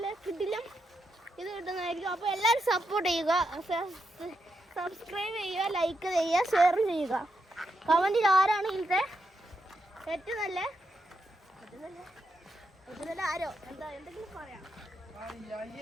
കിട്ടില്ല ഇത് കിട്ടുന്നതായിരിക്കും. അപ്പോൾ എല്ലാവരും സപ്പോർട്ട് ചെയ്യുക, സബ്സ്ക്രൈബ് ചെയ്യുക, ലൈക്ക് ചെയ്യുക, ഷെയർ ചെയ്യുക. കമൻറ്റിൽ ആരാണ് ഇതിലത്തെ ഏറ്റവും നല്ല ആരോ എന്തെങ്കിലും പറയാം.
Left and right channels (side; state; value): both; normal; correlation 0.83